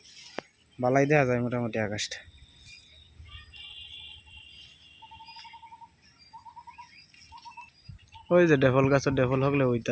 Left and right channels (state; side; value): identical; both; correlation 1.00